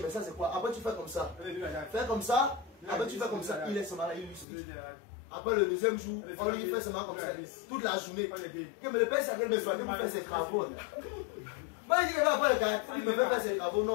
mais ça c'est quoi? Après tu fais comme ça. Fais comme ça. Après tu fais comme ça. Il est seulement là, il illustre. Après le deuxième jour, on lui fait seulement comme ça. Toute la journée. Mais le père c'est qu'il me fait faire ses travaux. Moi il dit qu'il va avoir le caractère. Il me fait faire ses travaux.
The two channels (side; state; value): right; drops out; at 4.5 s